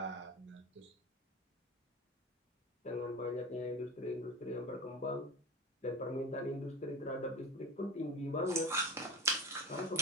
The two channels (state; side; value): normal; both; correlation 0.28